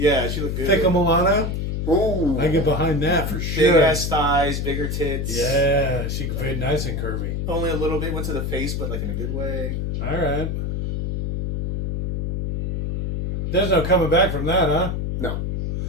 she looked good. Thick Milano. Ooh. I get behind that for Big sure. ass thighs, bigger tits. Yeah, she very nice and curvy. Only a little bit went to the face, but like in a good way. All right. There's no coming back from that, huh? No.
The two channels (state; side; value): noise; left; hum, 2 dB below the sound